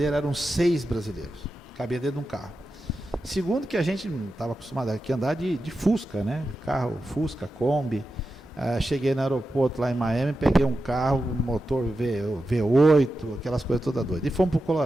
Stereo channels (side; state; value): both; normal; correlation 0.91